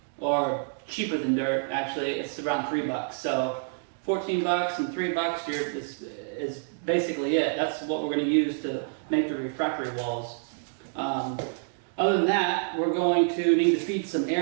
or cheaper than dirt actually. It's around $3. So 14 bucks and $3 is basically it. That's what we're going to use to make the refractory walls. Other than that, we're going to need to feed some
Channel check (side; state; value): left; silent; digital silence